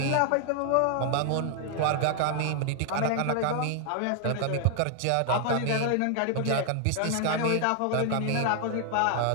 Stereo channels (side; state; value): both; different; correlation 0.00